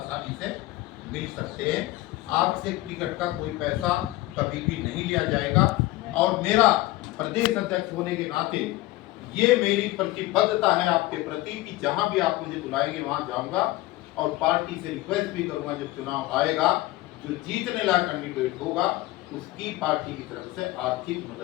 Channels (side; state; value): right; quieter; 18.5 dB